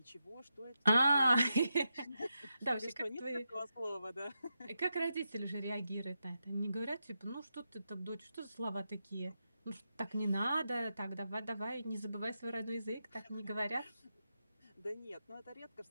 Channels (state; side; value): inverted; both; correlation -0.87